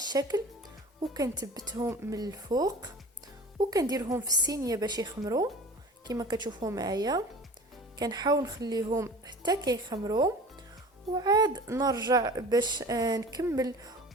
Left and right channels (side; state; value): both; normal; correlation 0.40